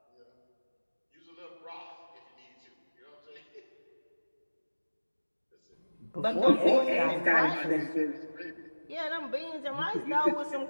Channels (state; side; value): inverted; both; correlation -1.00